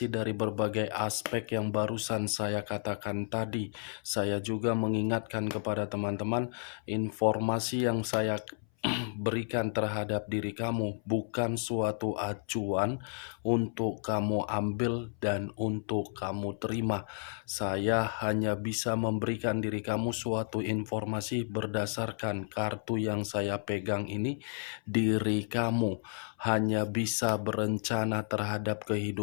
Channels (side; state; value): right; silent; 56 dB below the other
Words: dari berbagai aspek yang barusan saya katakan tadi, saya juga mengingatkan kepada teman-teman, informasi yang saya berikan terhadap diri kamu bukan suatu acuan untuk kamu ambil dan untuk kamu terima. Saya hanya bisa memberikan diri kamu suatu informasi berdasarkan kartu yang saya pegang ini. Diri kamu hanya bisa berencana terhadap